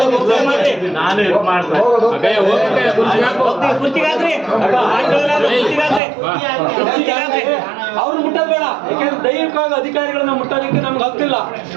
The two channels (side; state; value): left; drops out; at 6.0 s